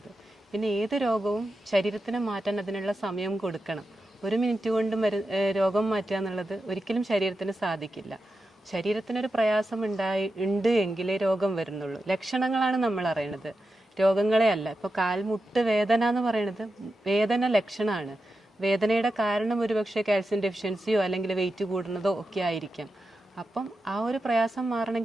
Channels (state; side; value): normal; both; correlation 0.90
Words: പിന്നെ ഏത് രോഗവും ശരീരത്തിന് മാറ്റാൻ അതിനുള്ള സമയം കൊടുക്കണം. 1 മിനിറ്റ് കൊണ്ട് രോഗം മാറ്റുക എന്നുള്ളത് ഒരിക്കലും ശരീരത്തിന് സാധിക്കില്ല. ശരീരത്തിനൊരു പ്രയാസം ഉണ്ട് എങ്കിലേ രോഗം വരുന്നുള്ളൂ. ലക്ഷണങ്ങളാണ് നമ്മൾ അറിയണത്, രോഗങ്ങളെ അല്ല. ഇപ്പോൾ കാൽമുട്ട് വേദന എന്ന് പറയുന്നത് വേദന ലക്ഷണമാണ്. വേദനയുടെ കാരണം ഒരുപക്ഷെ കാൽസ്യം ഡെഫിഷ്യൻസിയോ അല്ലെങ്കിൽ വെയിറ്റ് കൂടുന്നതോ ഒക്കെ ആയിരിക്കാം. അപ്പം ആ ഒരു പ്രയാസം